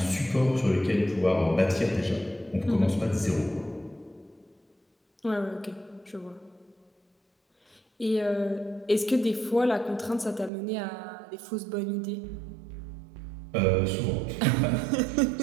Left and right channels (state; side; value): drops out; left; at 10.5 s